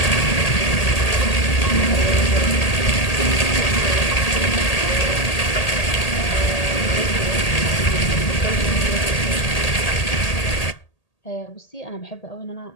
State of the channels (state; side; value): late; right; 1.8 ms